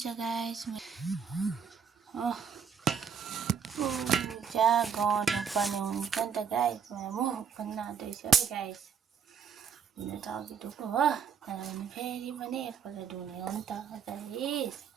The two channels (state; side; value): quieter; left; 7.0 dB